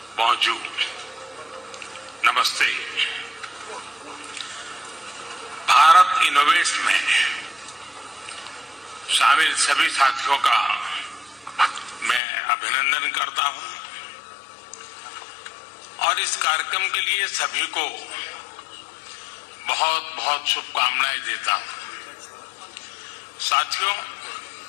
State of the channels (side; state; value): right; drops out; at 12.2 s